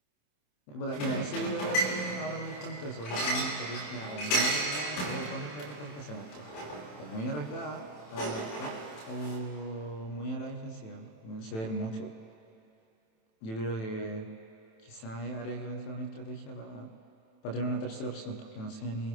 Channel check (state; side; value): late; right; 27 ms